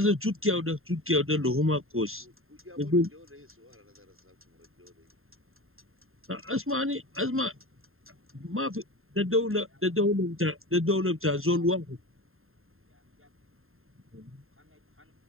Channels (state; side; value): late; left; 0.61 ms